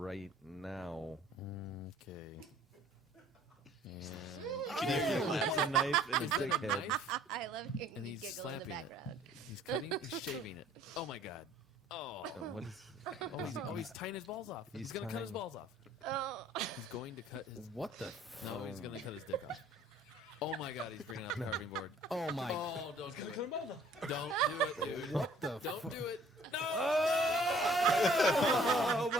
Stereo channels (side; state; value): both; normal; correlation 0.56